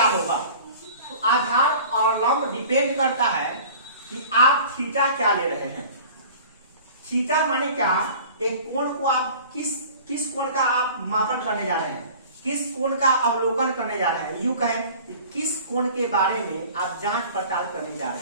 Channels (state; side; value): inverted; both; correlation -0.43